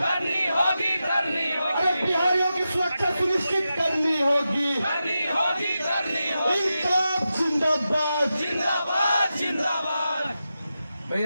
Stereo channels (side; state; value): both; inverted; correlation -0.90